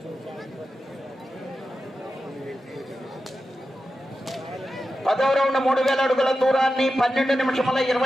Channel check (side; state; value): both; normal; correlation 0.91